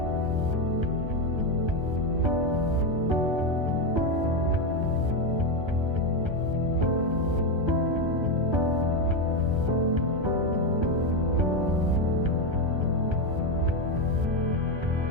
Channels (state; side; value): late; left; 1.3 ms